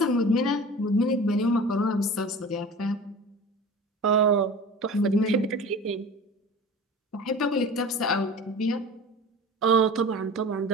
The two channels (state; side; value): normal; both; correlation 0.38